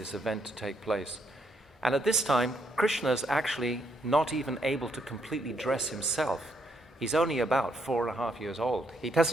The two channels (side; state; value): both; normal; correlation 0.74